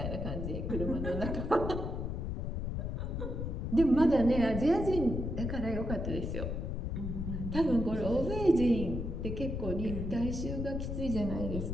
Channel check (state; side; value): noise; left; rumble, 3 dB below the sound